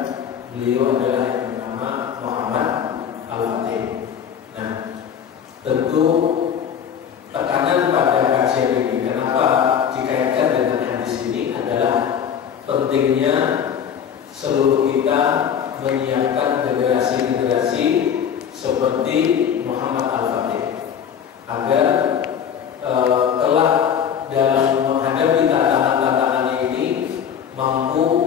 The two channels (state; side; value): quieter; right; 8.2 dB